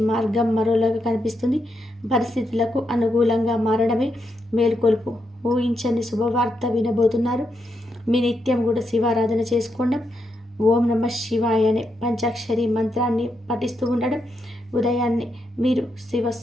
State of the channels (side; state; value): both; normal; correlation 0.82